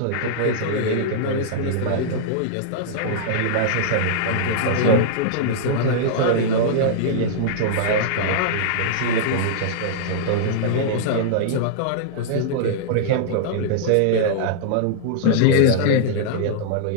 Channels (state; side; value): different; both; correlation -0.02